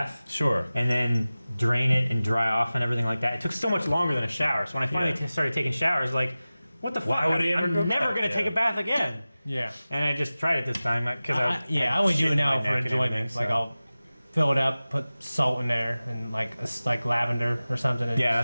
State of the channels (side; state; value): both; inverted; correlation -0.97